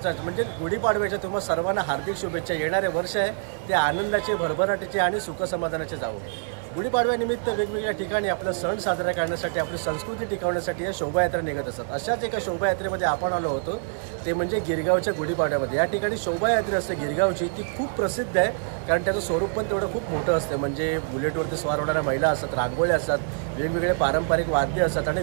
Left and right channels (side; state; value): left; silent; digital silence